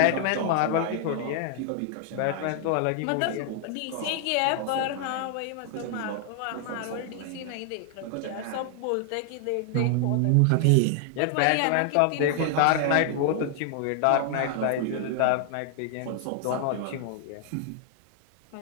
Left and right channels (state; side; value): different; both; correlation 0.00